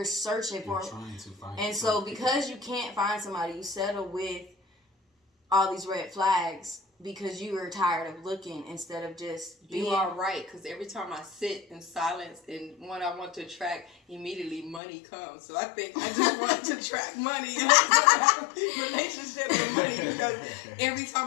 searching for. Trying to find. And so because you can't find somebody, you settle with all these red flags because you are tired of looking instead of just being. You are right, because every time I sit in silence and what I want to attract, immediately money comes. So I think I just want to attract money. And have a relationship with money, because every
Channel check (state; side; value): drops out; right; at 14.8 s